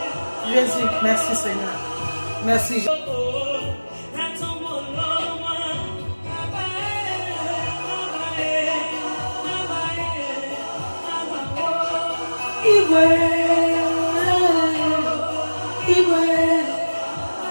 Jésus, merci Seigneur. Merci Jésus.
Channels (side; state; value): both; inverted; correlation -1.00